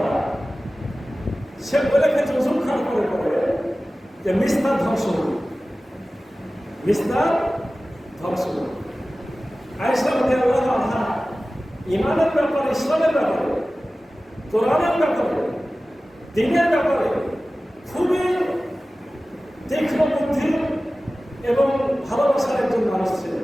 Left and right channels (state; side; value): normal; both; correlation 0.96